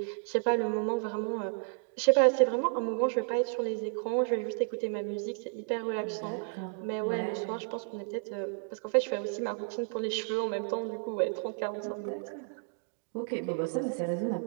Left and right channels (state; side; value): silent; left; 56 dB below the other